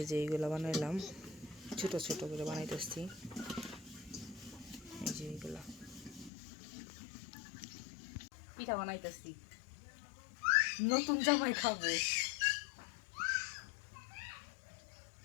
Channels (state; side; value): drops out; right; at 6.3 s